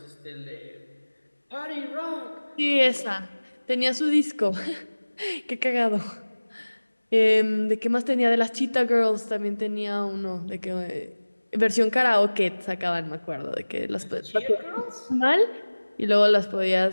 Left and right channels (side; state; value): both; inverted; correlation -1.00